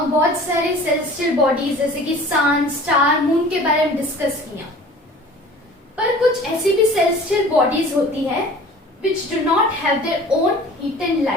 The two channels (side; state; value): both; normal; correlation 0.45